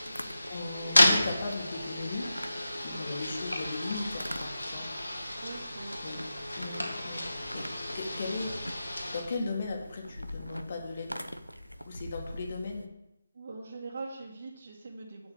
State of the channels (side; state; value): both; inverted; correlation -0.92